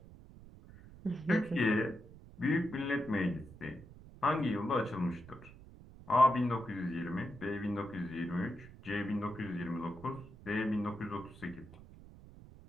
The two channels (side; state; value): right; noise; rumble, 19 dB below the sound